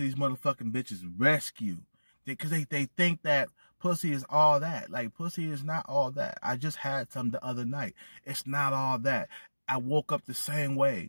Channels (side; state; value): both; inverted; correlation -1.00